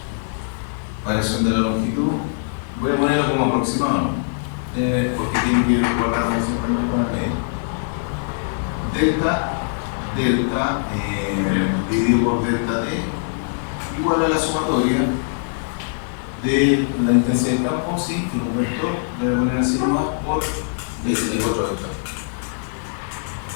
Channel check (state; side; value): silent; right; digital silence